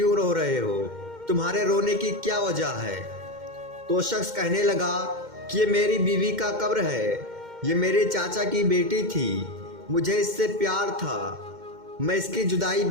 رو رہے ہو؟ تمہارے رونے کی کیا وجہ ہے؟ تو شخص کہنے لگا کہ یہ میری بیوی کا قبر ہے، یہ میرے چاچا کی بیٹی تھی، مجھے اس سے پیار تھا، میں اس کی جدائی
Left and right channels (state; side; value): late; left; 2.1 ms